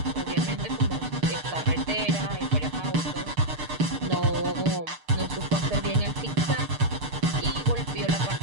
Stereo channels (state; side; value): late; left; 6.6 ms